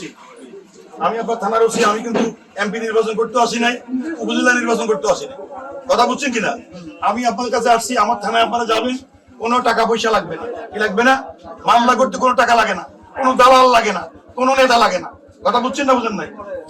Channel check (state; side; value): identical; both; correlation 1.00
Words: থানার ওসি, আমি কিন্তু এমপি নির্বাচন করতে আসি নাই, উপজেলা নির্বাচন করতে আসি নাই। কথা বুঝছেন কিনা? আমি আপনার কাছে আসছি, আমার থানায় আপনারা যাবেন, কোনো টাকা পয়সা লাগবে না। কি লাগবে না? মামলা করতে কোনো টাকা লাগে না, কোনো দালাল লাগে না, কোনো নেতা লাগে না। কথা বুঝছেন না বুঝেন নাই?